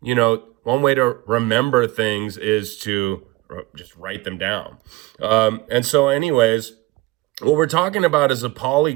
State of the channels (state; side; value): quieter; left; 19.8 dB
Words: way to remember things is to just write them down. And so anyways, what we're talking about is a